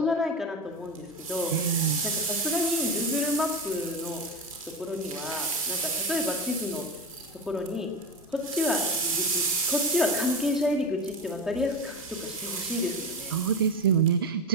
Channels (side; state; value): both; normal; correlation 0.23